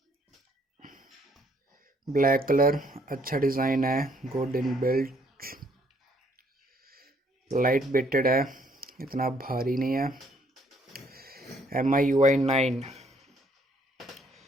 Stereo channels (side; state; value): both; normal; correlation 0.66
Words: ब्लैक कलर, अच्छा डिज़ाइन है, good in built, light weighted है, इतना भारी नहीं है। MIUI 9